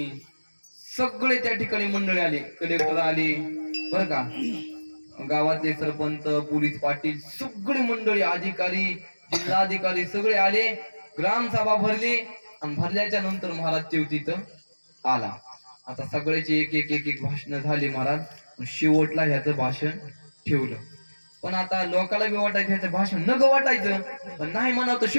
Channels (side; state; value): both; inverted; correlation -1.00